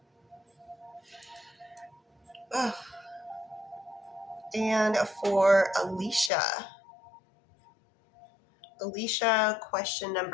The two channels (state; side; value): drops out; right; at 6.3 s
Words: Ugh. And for Alicia. Alicia, question